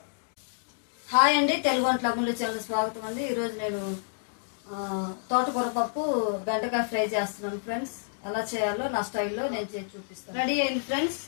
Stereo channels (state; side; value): silent; right; digital silence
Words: హాయ్ అండి, తెలుగు వంటల ముందు చాలా స్వాగతం అండి. ఈరోజు నేను తోటకూర పప్పు బెండకాయ ఫ్రై చేస్తున్నాను ఫ్రెండ్స్. ఎలా చేయాలో నా స్టైల్లో నేను చేసి చూపిస్తాను. రెడీ అయింది ఫ్రెండ్స్.